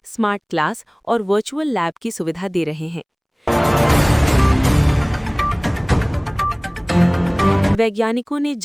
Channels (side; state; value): both; identical; correlation 1.00